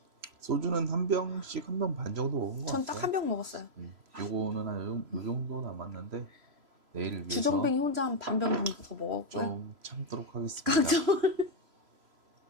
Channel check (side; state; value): left; late; 3.0 ms